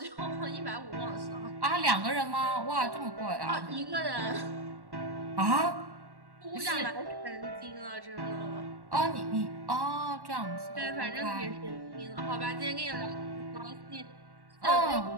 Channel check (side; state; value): left; late; 1.1 ms